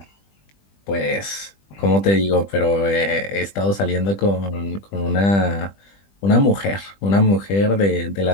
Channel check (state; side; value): late; right; 20 ms